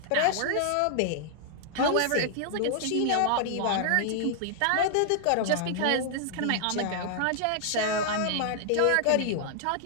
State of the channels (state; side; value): different; both; correlation 0.00